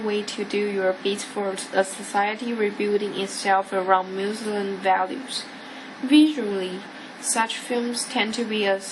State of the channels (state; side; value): identical; both; correlation 1.00